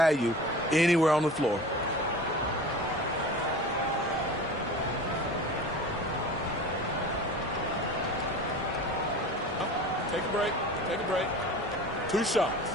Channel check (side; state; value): both; normal; correlation 0.36